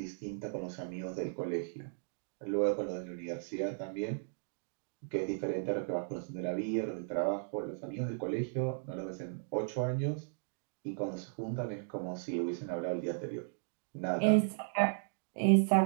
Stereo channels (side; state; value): left; silent; digital silence